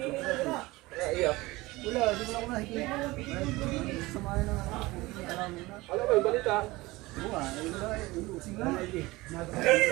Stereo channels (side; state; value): left; quieter; 20.7 dB